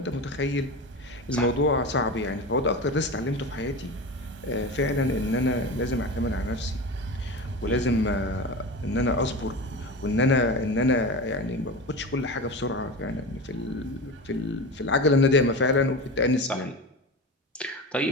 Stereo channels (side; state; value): both; normal; correlation 0.27